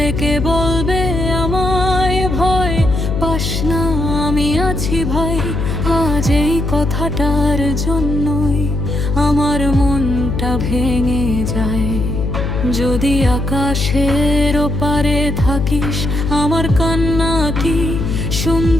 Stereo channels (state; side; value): noise; left; hum, 2 dB below the sound